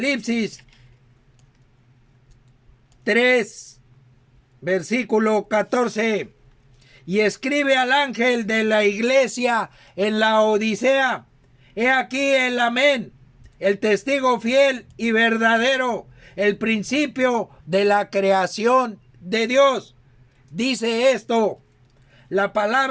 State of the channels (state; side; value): identical; both; correlation 1.00